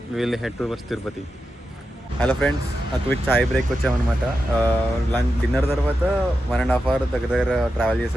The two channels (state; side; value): normal; both; correlation 0.89